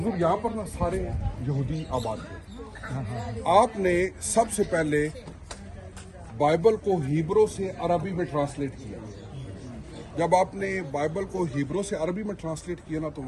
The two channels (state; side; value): identical; both; correlation 1.00